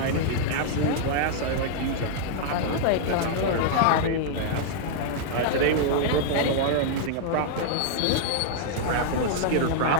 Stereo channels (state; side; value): different; both; correlation -0.01